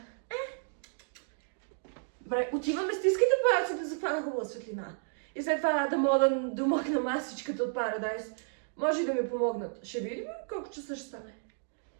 Добре, отиваме, стискайте палци да захвана хубава светлина. И след това да мога да домъкна масичката от Paradise. Може и да ми помогнат. Ще видим колко часа ще стане.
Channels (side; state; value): left; silent; digital silence